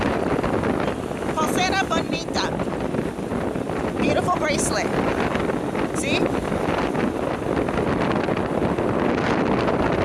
Pulsera bonita. Beautiful bracelet. See?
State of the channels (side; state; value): both; identical; correlation 1.00